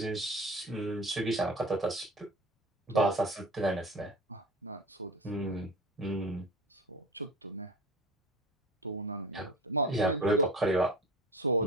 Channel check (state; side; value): normal; both; correlation 0.35